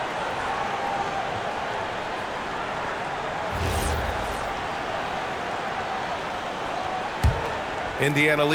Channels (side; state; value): both; identical; correlation 1.00